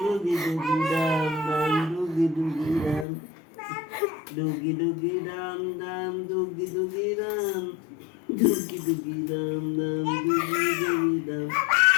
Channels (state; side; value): drops out; right; at 3.1 s